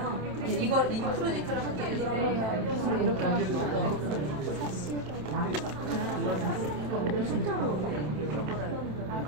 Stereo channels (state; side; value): late; left; 27 ms